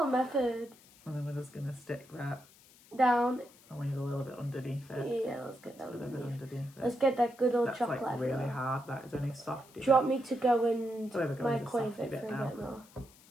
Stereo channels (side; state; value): left; noise; hiss, 25 dB below the sound